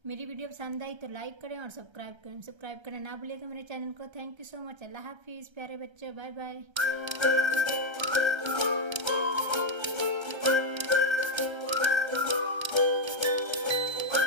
मेरी वीडियो पसंद आई तो लाइक करें और सब्सक्राइब करना ना भूलिएगा मेरे चैनल को। Thank you so much. अल्लाह हाफिज़ प्यारे बच्चों, बाय बाय।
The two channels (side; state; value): left; late; 1.3 ms